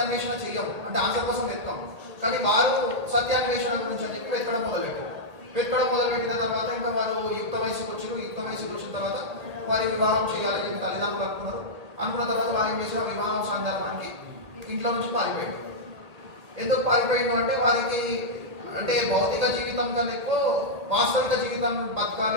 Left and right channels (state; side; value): late; left; 1.8 ms